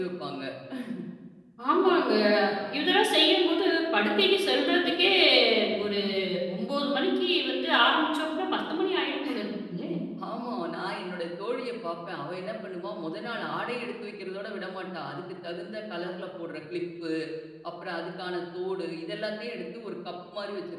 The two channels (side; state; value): both; identical; correlation 1.00